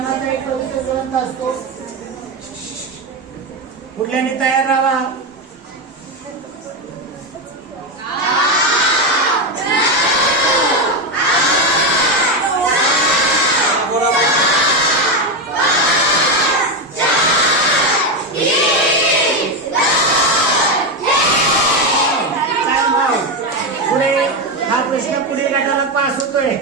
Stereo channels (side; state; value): both; normal; correlation 0.11